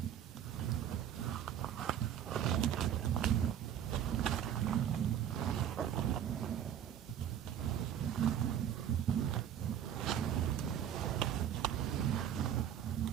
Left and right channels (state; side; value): quieter; left; 9.8 dB